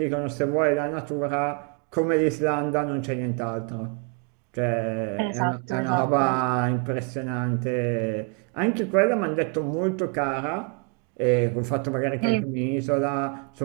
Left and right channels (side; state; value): left; quieter; 29.9 dB